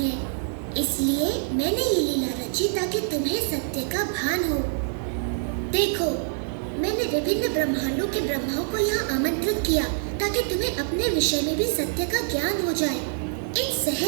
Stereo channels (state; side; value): silent; left; digital silence